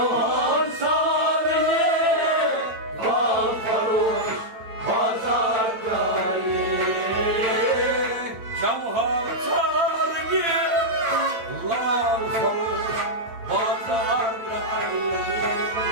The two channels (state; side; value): late; left; 8.9 ms